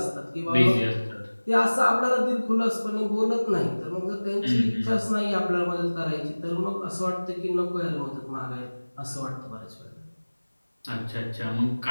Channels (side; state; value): both; inverted; correlation -1.00